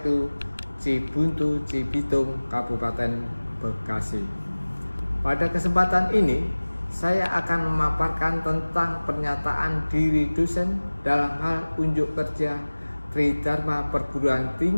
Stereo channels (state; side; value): inverted; both; correlation -1.00